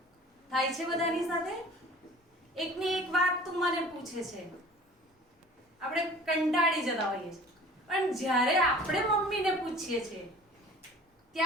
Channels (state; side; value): normal; both; correlation 0.45